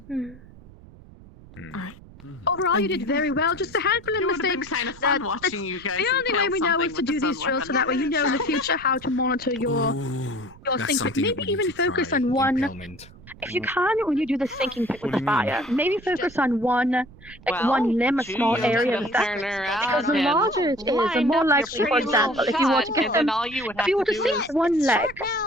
Overall, you did very well. Just a handful of mistakes. Kind of fun watching you guys. The only way we know is to do these drills, so that way you know in the future how to monitor your thinking. Maybe even focus on one if you can, when you do the sinking pit with the fire, maybe focus on one limb, a small area of that. Because the larger it is, the more likely, for example, if you were to get them, if you were to sink one leg,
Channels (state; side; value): noise; right; rumble, 21 dB below the sound